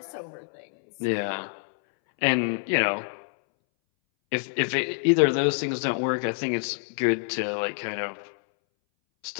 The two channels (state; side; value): silent; right; 61 dB below the other